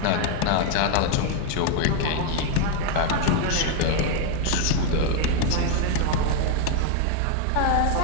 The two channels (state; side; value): different; both; correlation 0.01